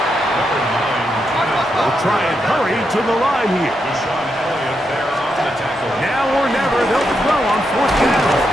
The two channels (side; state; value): both; normal; correlation 0.83